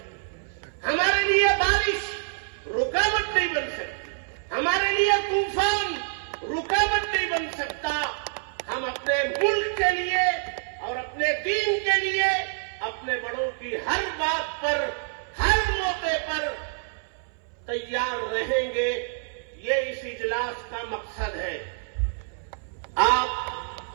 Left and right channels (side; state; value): left; silent; 60 dB below the other